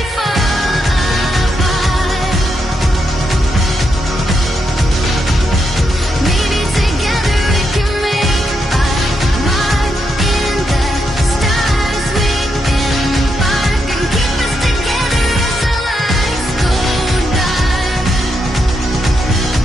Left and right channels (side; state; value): both; normal; correlation 0.82